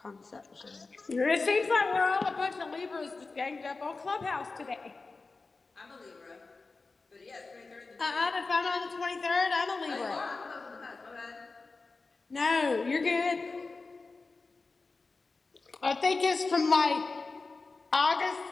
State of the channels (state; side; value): quieter; right; 3.9 dB